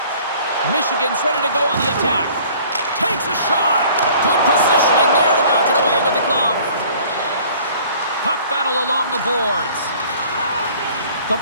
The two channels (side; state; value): both; inverted; correlation -0.52